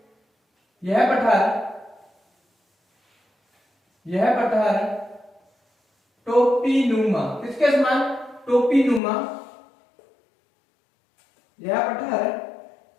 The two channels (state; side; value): drops out; right; at 9.0 s